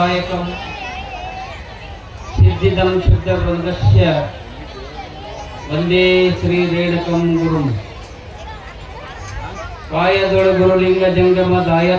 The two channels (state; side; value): identical; both; correlation 1.00